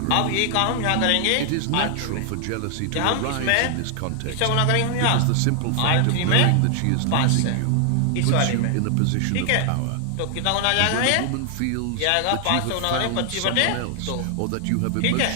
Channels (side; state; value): both; different; correlation 0.00